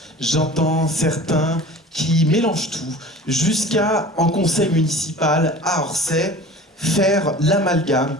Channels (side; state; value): both; normal; correlation 0.40